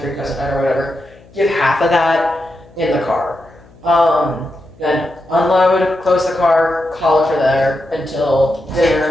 cups at night or whatever, give half of that in the car. Then unload, close the car, call it for there until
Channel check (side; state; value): left; noise; hum, 26 dB below the sound